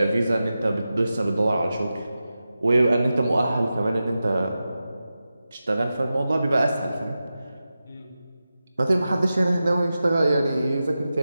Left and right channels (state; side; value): inverted; both; correlation -0.93